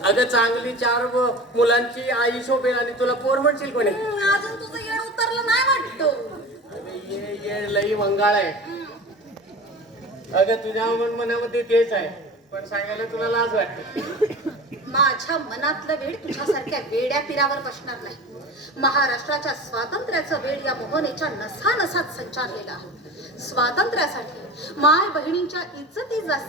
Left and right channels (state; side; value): normal; both; correlation 0.35